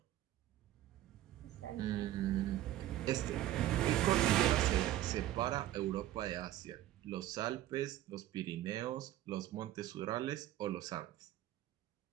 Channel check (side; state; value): left; quieter; 13.6 dB